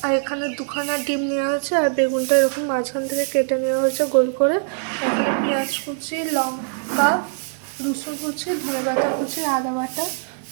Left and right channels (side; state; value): left; silent; digital silence